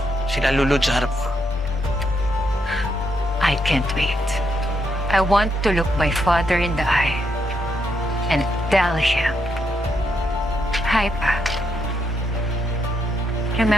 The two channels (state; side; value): normal; both; correlation 0.78